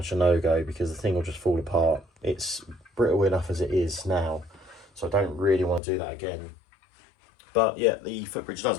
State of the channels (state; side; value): drops out; right; at 5.8 s